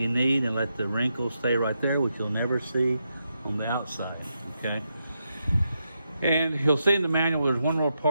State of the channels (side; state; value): both; inverted; correlation -0.84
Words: need and let the wrinkles stay right there, which you'll never see on the outside, okay? And you'll see in the manual, there's one little